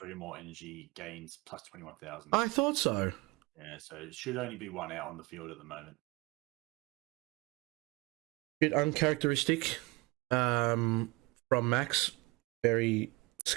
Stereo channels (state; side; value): quieter; left; 23.8 dB